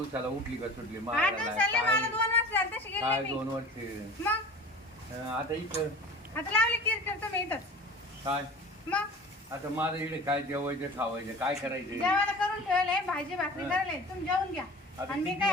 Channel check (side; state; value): both; normal; correlation 0.39